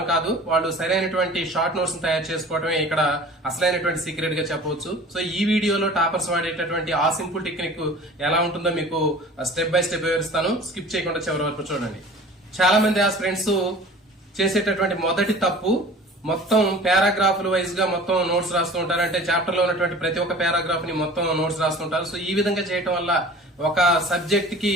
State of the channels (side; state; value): both; normal; correlation 0.43